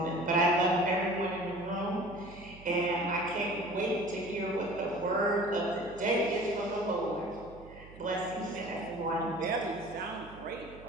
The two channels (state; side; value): noise; right; hum, 19 dB below the sound